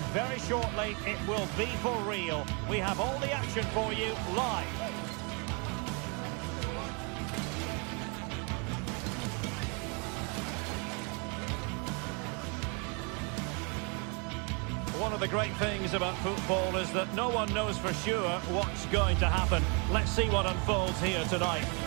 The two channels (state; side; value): quieter; left; 33.9 dB